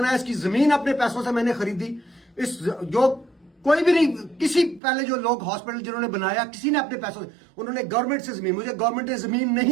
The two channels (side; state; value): left; drops out; at 4.8 s